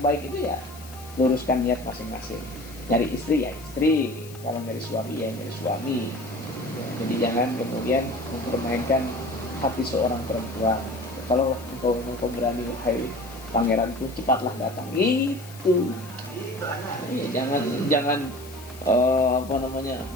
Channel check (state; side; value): noise; left; hiss, 19 dB below the sound